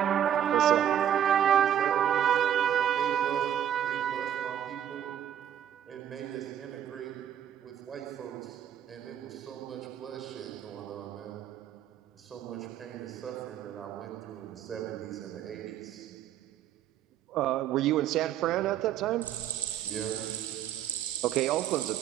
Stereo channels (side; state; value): left; quieter; 10.3 dB